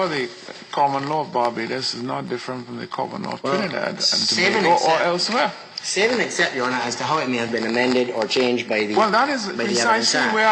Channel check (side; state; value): both; identical; correlation 1.00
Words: the common law of Barbados is not different from the common law of Trinidad and Tobago or elsewhere. Save and accept, Your Honor, as to how it may have been amended or changed by the Well, that is by the Evidence precisely Act. where